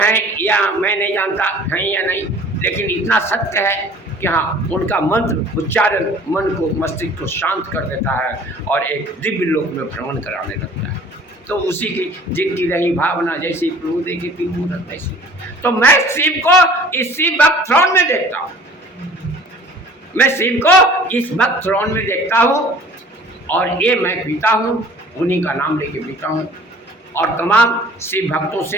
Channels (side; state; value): both; normal; correlation 0.49